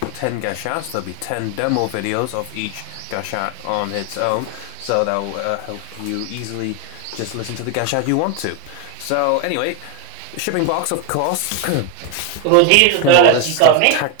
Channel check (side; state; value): both; different; correlation 0.01